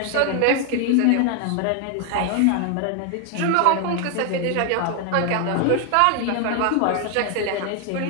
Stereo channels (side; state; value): both; different; correlation 0.00